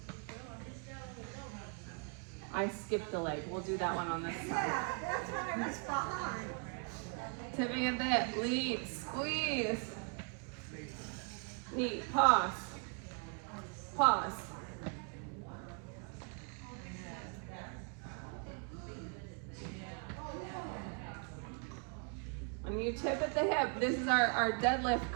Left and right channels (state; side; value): quieter; left; 38.7 dB